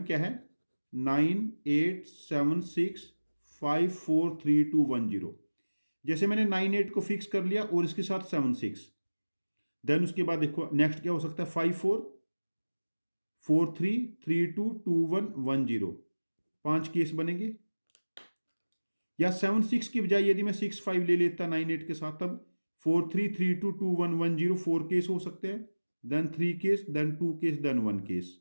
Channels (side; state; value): both; inverted; correlation -1.00